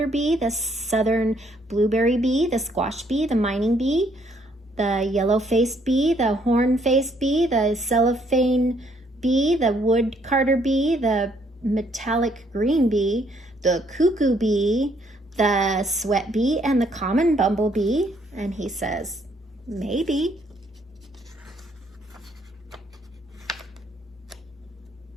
bee, the southern blueberry bee, the squash bee, the mining bee, the yellow-faced bee, the horn-faced bee, the cellophane bee, the wood carder bee, the metallic green bee, the cuckoo bee, the sweat bee, and the common bumblebee. And he says, maybe.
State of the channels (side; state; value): both; normal; correlation 0.68